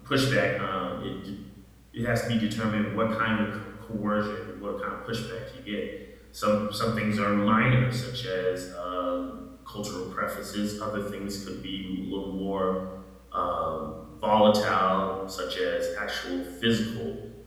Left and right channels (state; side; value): identical; both; correlation 1.00